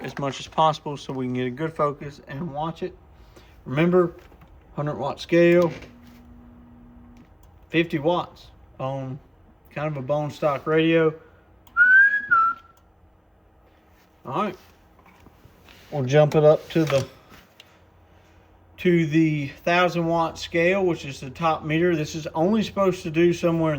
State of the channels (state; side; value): identical; both; correlation 1.00